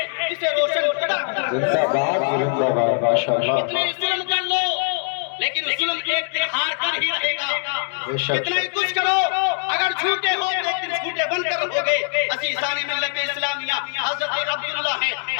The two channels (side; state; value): right; silent; digital silence